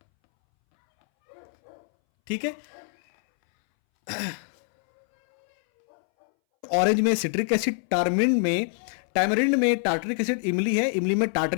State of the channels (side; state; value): right; silent; 62 dB below the other